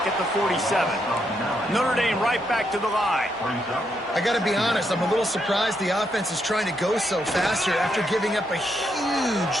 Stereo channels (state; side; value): normal; both; correlation 0.79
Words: at the 47. Notre Dame right back to the line. I got to be honest, I'm a little surprised the offense is trying to go so fast here after giving up a